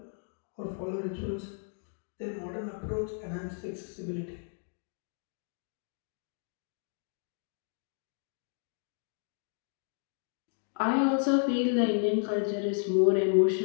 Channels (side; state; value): right; silent; 56 dB below the other